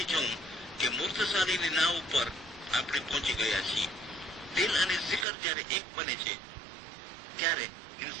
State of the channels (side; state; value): left; drops out; at 5.2 s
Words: જવું કે મૂર્તશાળીની નાવ ઉપર આપણે પહોંચી ગયા છીએ. દિલ અને શિખર જ્યારે એક બને છે ત્યારે